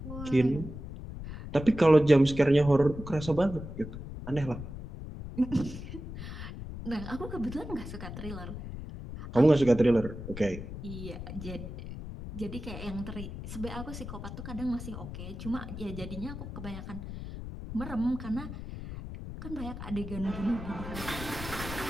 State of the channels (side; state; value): left; noise; rumble, 9 dB below the sound